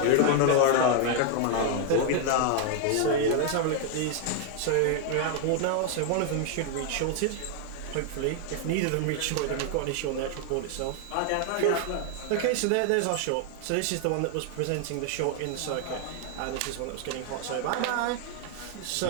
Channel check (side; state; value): both; different; correlation 0.00